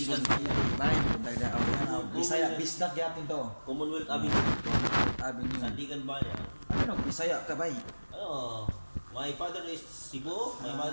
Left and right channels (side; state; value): both; inverted; correlation -1.00